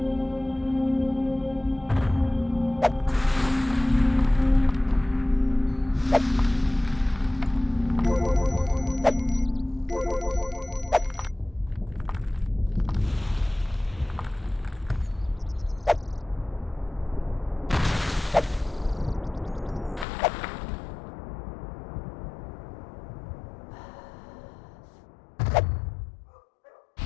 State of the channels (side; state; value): right; drops out; at 20.1 s